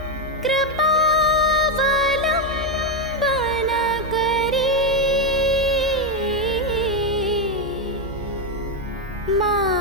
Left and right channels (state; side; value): normal; both; correlation 0.06